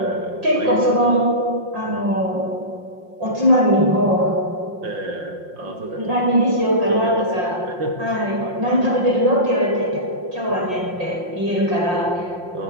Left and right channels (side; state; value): left; late; 5.6 ms